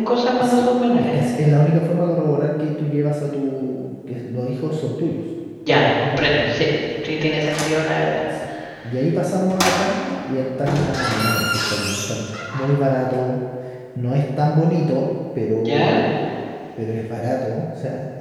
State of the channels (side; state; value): both; identical; correlation 1.00